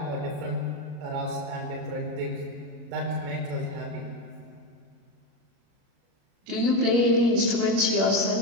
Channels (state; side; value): late; left; 34 ms